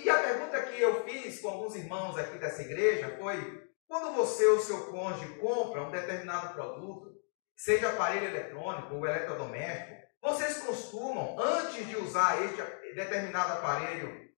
E a pergunta que eu fiz com alguns irmãos aqui dessa igreja foi: quando você ou seu cônjuge compra um determinado produto, seja aparelho eletrônico ou eletrodoméstico, vocês costumam, antes de usar este determinado aparelho,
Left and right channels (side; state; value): right; silent; digital silence